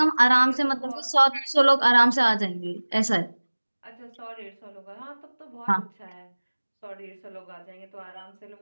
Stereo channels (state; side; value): inverted; both; correlation -1.00